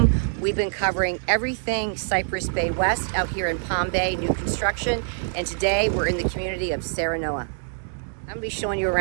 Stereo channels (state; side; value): silent; left; digital silence